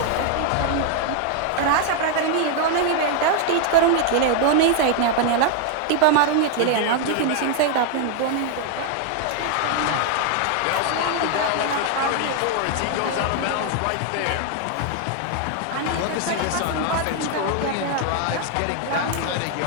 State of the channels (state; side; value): different; both; correlation 0.00